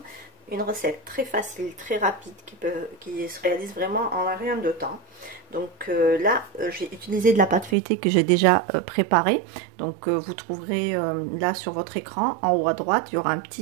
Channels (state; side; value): drops out; left; at 7.8 s